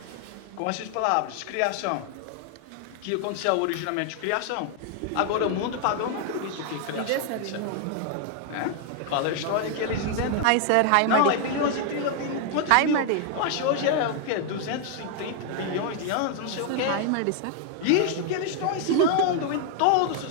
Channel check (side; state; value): both; different; correlation 0.00